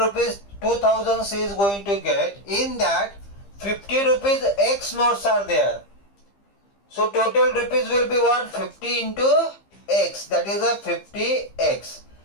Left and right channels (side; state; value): right; late; 15 ms